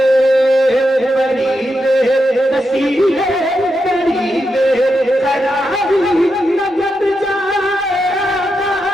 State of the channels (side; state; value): both; normal; correlation 0.85